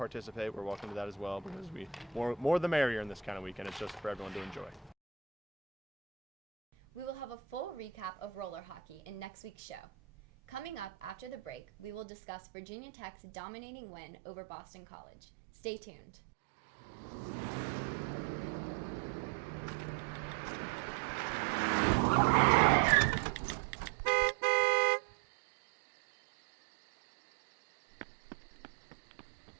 We're welcome to that as well, because more the merrier in this kind of weekend. It's just for everyone to enjoy. We will have a full recap of roller hockey in next week's show. Coming up after the break, we will discuss Virginia Tech's dominating win over Boston College. Stay tuned.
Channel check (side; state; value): left; drops out; at 12.1 s